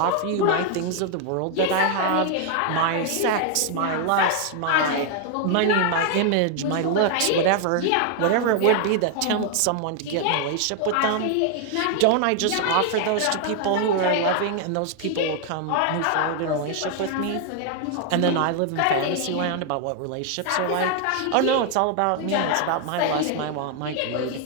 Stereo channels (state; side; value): different; both; correlation 0.00